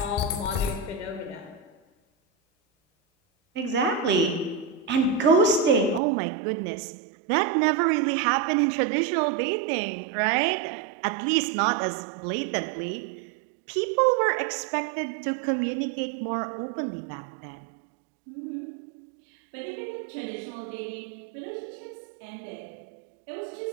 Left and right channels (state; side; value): drops out; left; at 6.0 s